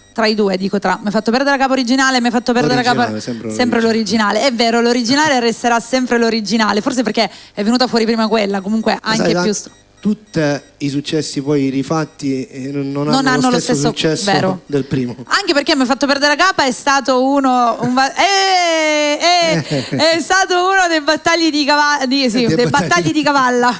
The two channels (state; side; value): identical; both; correlation 1.00